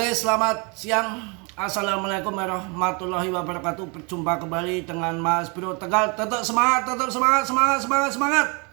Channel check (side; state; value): left; quieter; 31.8 dB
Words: selamat siang. Assalamualaikum warahmatullahi wabarakatuh. Berjumpa kembali dengan Mas Bro Tegal. Tetap semangat, semangat.